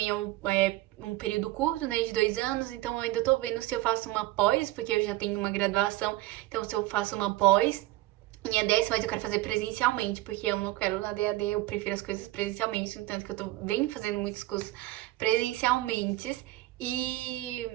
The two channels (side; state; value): left; quieter; 17.6 dB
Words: é um período curto, né, de 2 anos, então eu ainda tô vendo se eu faço uma pós, porque eu já tenho uma graduação, então se eu faço uma pós em ADS, mas eu quero fazer presencialmente, porque eu não quero na DAD, eu prefiro as coisas presencialmente, no tanto que eu venho fazendo muitos cursos presencialmente. E